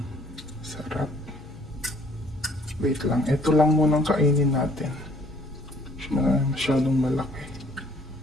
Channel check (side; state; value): both; normal; correlation 0.60